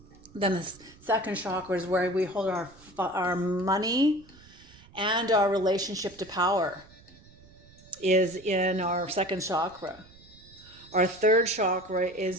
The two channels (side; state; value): right; noise; rumble, 24 dB below the sound